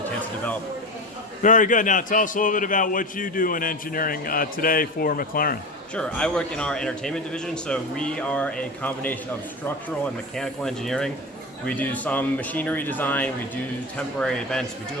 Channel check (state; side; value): normal; both; correlation 0.25